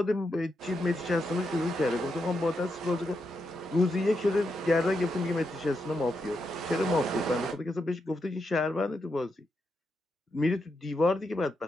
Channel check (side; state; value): both; normal; correlation 0.84